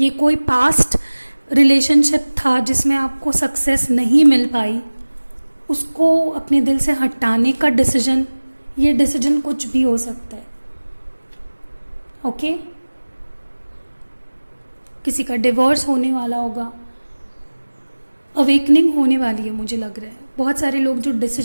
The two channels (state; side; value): inverted; both; correlation -1.00